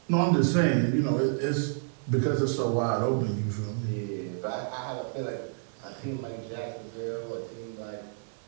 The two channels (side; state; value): left; silent; digital silence